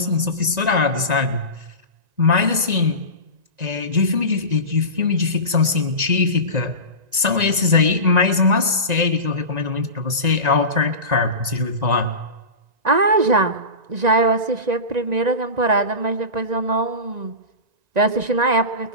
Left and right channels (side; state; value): left; late; 1.9 ms